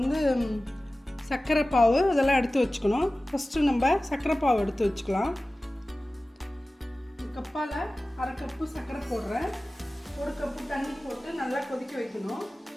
சர்க்கரை பாவு இதெல்லாம் எடுத்து வச்சுக்கணும். ஃபஸ்ட்டு நம்ம சர்க்கரை பாவு எடுத்து வச்சுக்கலாம். கப்பால் அரை கப்பு சர்க்கரை போடுறேன். ஒரு கப்பு தண்ணி போட்டு நல்லா கொதிக்க வைக்கணும்.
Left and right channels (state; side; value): normal; both; correlation 0.97